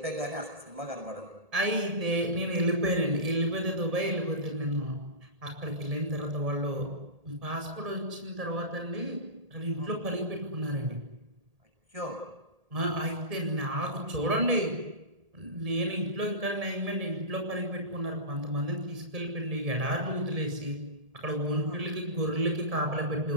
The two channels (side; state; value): left; late; 1.7 ms